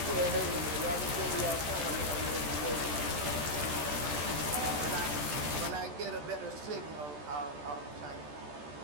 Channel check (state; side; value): late; left; 14 ms